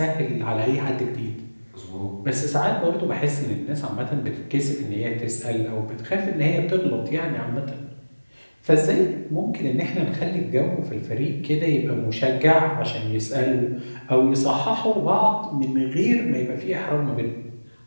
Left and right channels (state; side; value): inverted; both; correlation -1.00